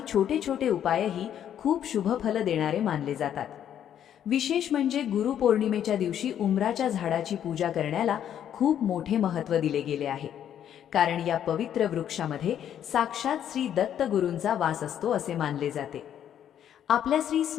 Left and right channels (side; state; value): right; quieter; 9.9 dB